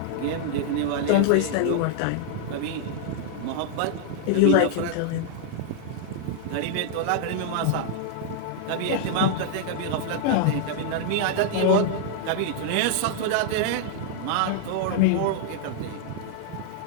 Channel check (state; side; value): different; both; correlation -0.01